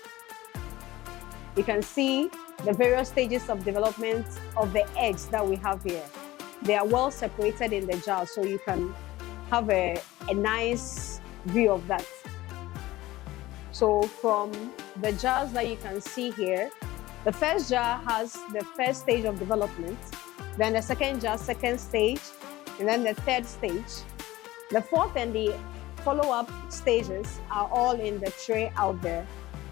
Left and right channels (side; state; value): right; quieter; 17.4 dB